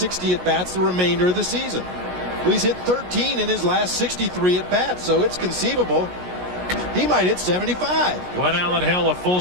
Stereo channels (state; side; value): late; left; 16 ms